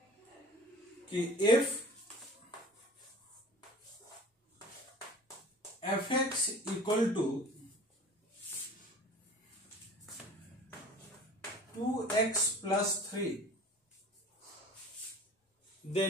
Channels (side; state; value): both; normal; correlation 0.43